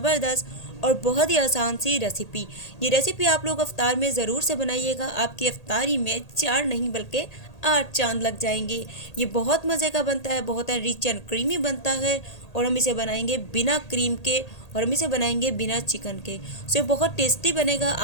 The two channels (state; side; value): late; right; 1.8 ms